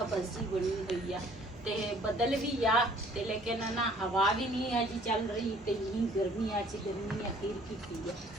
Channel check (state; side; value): normal; both; correlation 0.57